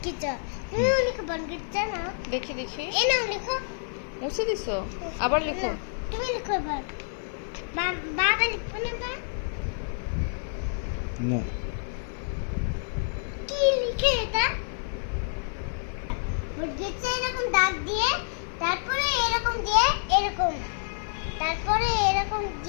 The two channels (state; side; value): silent; right; 59 dB below the other